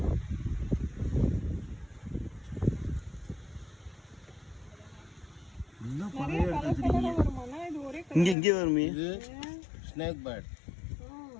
இங்க இங்கே வருமே. இது ஸ்னேக் பேர்ட்.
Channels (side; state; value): right; drops out; at 8.3 s